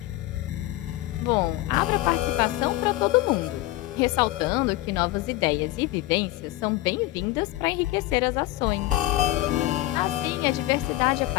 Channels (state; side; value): quieter; right; 16.9 dB